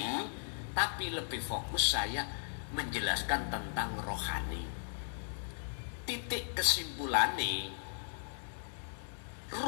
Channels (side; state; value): right; silent; digital silence